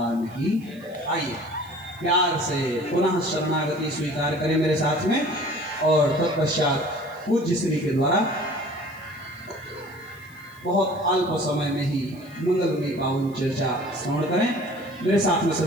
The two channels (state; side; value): noise; right; hiss, 27 dB below the sound